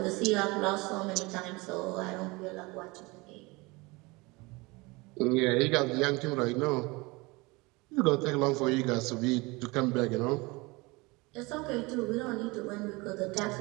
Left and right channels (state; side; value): quieter; left; 24.6 dB